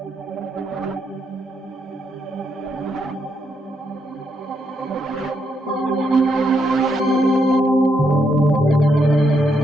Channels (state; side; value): normal; both; correlation 0.78